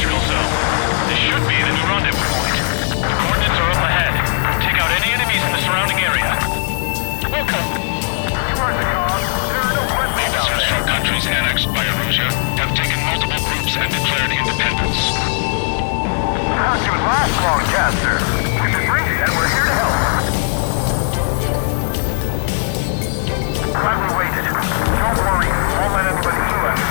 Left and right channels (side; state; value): right; silent; 68 dB below the other